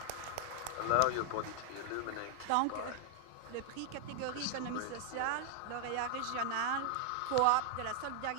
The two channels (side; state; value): both; different; correlation 0.00